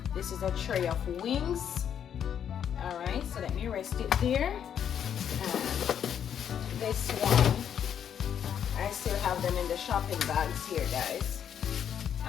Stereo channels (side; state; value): right; quieter; 8.8 dB